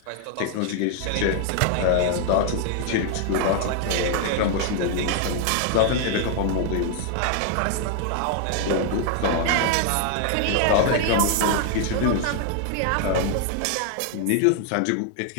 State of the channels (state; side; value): different; both; correlation 0.00